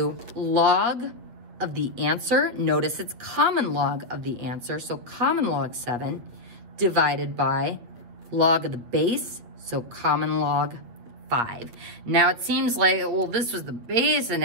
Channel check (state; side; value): late; left; 8.8 ms